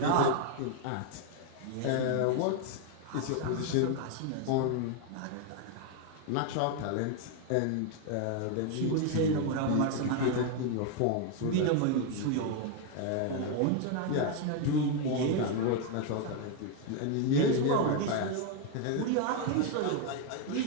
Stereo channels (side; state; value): both; different; correlation 0.01